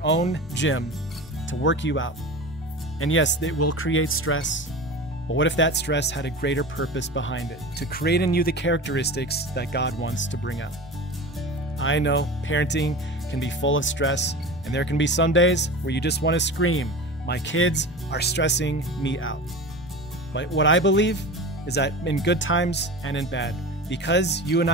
own gym to work you out. And yes, it will create stress. But what if that stress had a greater purpose behind it, to create in you the characteristics that God wants to bring out? I know parenting can be full of stress, and there can be some days where you just want to scream, "My kids are stressing me out." But what I believe is that in good times and in bad, because you and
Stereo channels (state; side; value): normal; both; correlation 0.31